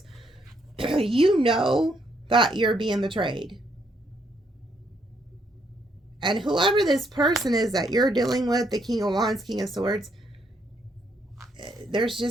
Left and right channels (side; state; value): both; normal; correlation 0.73